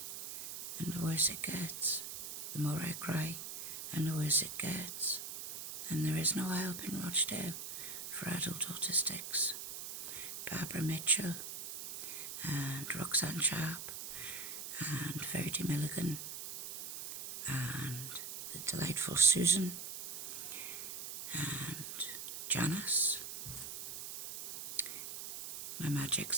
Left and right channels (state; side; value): noise; right; hiss, 8 dB below the sound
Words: and the worse it gets, the more I cry and the worse it gets. And there is no help in Rochdale for adult autistics. Barbara Mitchell and Roxanne Sharp and Verity Milligan and the delightful Susan and Janice. My Magic